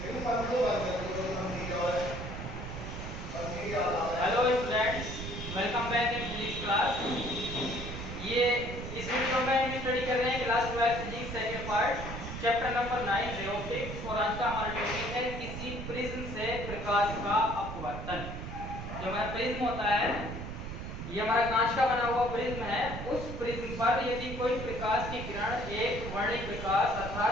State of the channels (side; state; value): right; noise; rumble, 7 dB below the sound